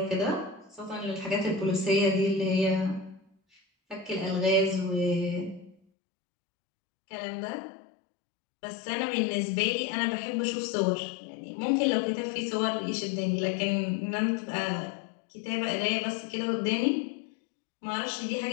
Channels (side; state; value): right; drops out; at 5.8 s